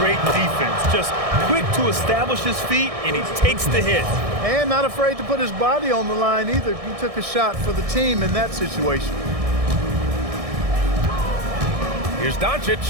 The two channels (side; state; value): left; late; 1.6 ms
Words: defense. Just quick to establish his feet, and he takes the hit. And not afraid to put his body on the line either. He took a shot for the team in that situation. Here's Doncic.